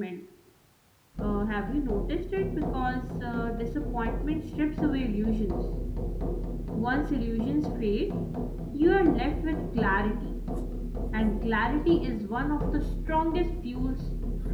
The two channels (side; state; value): both; identical; correlation 1.00